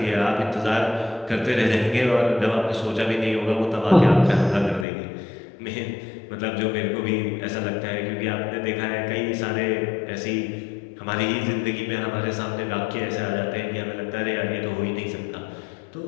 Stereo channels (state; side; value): drops out; right; at 4.9 s